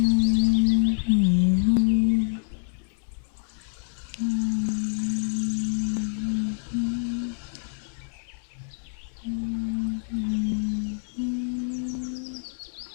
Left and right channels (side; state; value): right; silent; 60 dB below the other